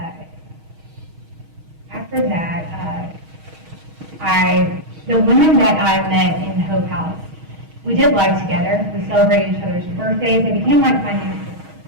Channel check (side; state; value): left; late; 6.3 ms